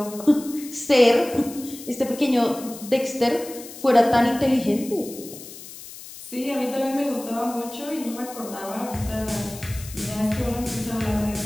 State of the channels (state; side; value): noise; left; hiss, 15 dB below the sound